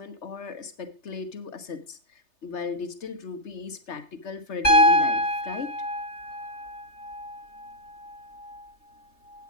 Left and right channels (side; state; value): right; late; 3.3 ms